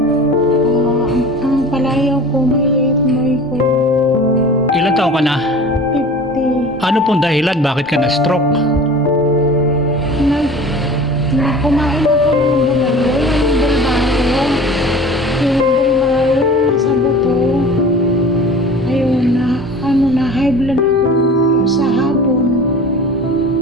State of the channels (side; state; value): both; normal; correlation 0.40